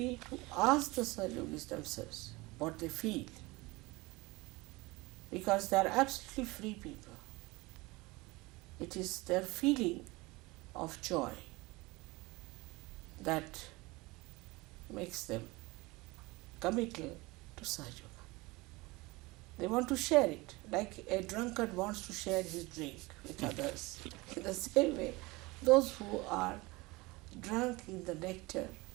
to ask the Sahajogis themselves what they feel, because they are absolutely free people. It is their feeling of joy that makes them committal to Sahaja. They want to share it, like a drunkard wants to share his drink with others. In the same way, those who are drunk in the nectar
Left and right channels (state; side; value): quieter; left; 22.9 dB